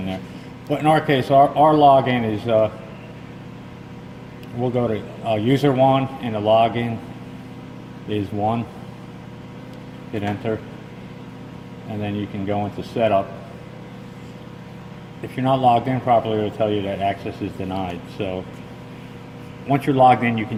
there. But in our case, our login is, we'll go to user 1, and the login is 1. Hit enter, and then you can go into setup. If you're not logged in properly, it'll tell you that access is denied. So once you're logged in, you can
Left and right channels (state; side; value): identical; both; correlation 1.00